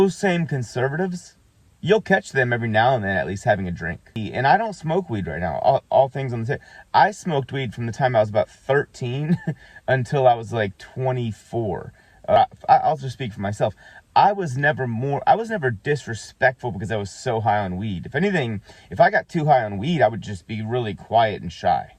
same conservatives, you'll catch them every now and then at least having a drink. And I don't smoke weed right now. All things on the table. I smoked weed from the time I was about 13 until I was like 24. I'll just speak for myself. I was never disrespectful because I was so high on weed. If anything, if I got too high on weed, I would just be really quiet and shy.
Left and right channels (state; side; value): identical; both; correlation 1.00